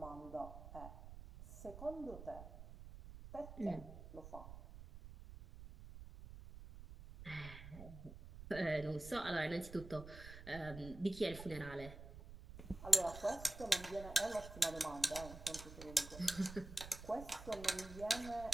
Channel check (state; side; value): noise; right; rumble, 13 dB below the sound